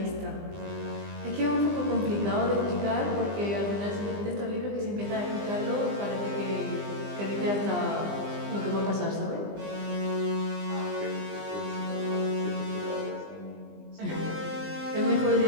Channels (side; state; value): left; late; 20 ms